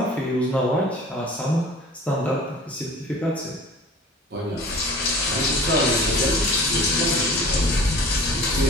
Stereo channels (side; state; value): both; normal; correlation 0.43